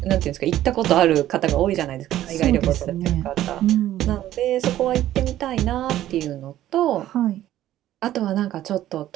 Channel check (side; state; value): left; quieter; 13.2 dB